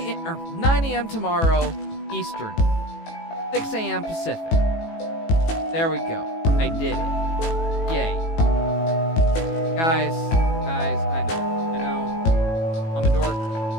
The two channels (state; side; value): late; right; 18 ms